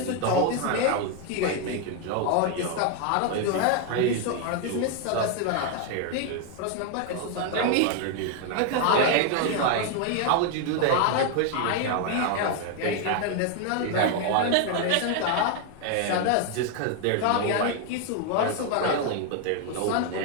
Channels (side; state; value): both; different; correlation 0.01